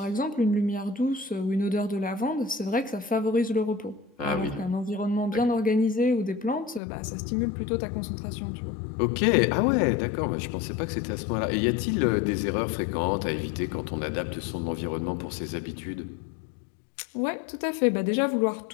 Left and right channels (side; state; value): right; drops out; at 6.8 s